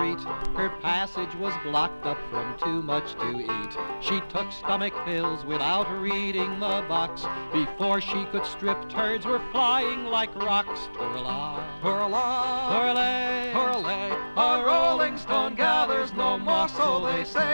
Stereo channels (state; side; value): inverted; both; correlation -1.00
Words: Her passage was blocked up from too much to eat. She took stomach pills without reading the box. Before she could strip, turds were flying like rocks. Twirl-a, twirl-a, twirl-a, twirl-a. A rolling stone gathers no more, so they